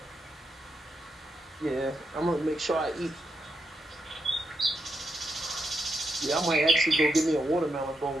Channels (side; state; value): both; normal; correlation 0.84